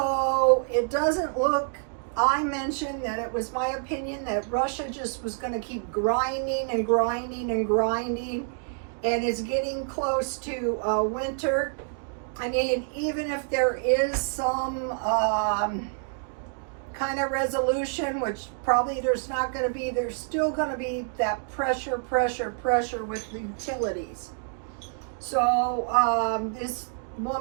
it doesn't look, I mentioned that it was my opinion that Russia just was going to keep grinding and grinding and grinding, and it's getting close to winter. I mean, even if there is some kind of resolution, which probably there's not going to be, there's still going to be that pressure with the utilities. So this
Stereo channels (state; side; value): silent; left; digital silence